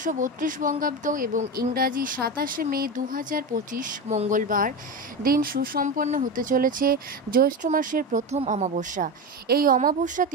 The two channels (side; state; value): both; normal; correlation 0.19